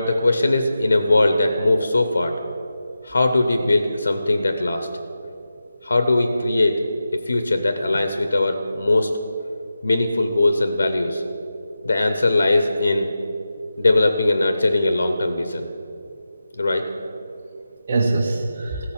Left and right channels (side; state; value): both; inverted; correlation -0.92